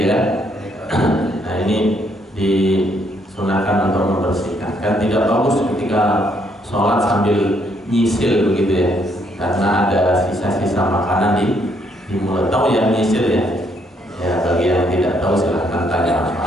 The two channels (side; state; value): both; normal; correlation 0.71